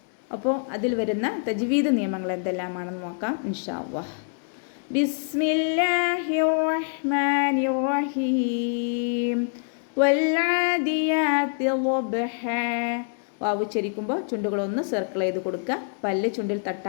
അപ്പോൾ അതിൽ വരുന്ന തജ്വീദ് നിയമങ്ങൾ എന്തെല്ലാമാണെന്ന് നോക്കാം ഇൻഷാ അല്ലാഹ്. ബിസ്മില്ലാഹിർ റഹ്മാനിർ റഹീം വൽ ആദിയാത്തി ളബ്ഹാ. വാവ് ഉച്ചരിക്കുമ്പോൾ ചുണ്ടുകളൊന്ന് സർക്കിൾ ചെയ്ത് കൊടുക്കുക, പല്ല് ചുണ്ടിൽ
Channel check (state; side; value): silent; right; 61 dB below the other